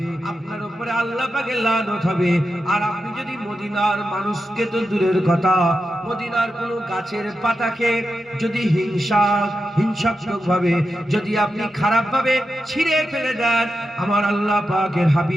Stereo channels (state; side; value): normal; both; correlation 0.89